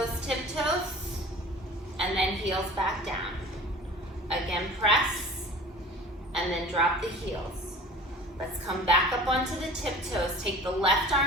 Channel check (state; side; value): normal; both; correlation 0.42